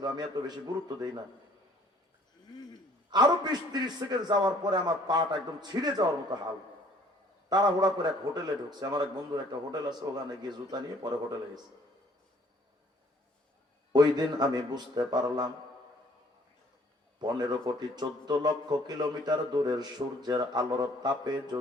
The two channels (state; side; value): normal; both; correlation 0.58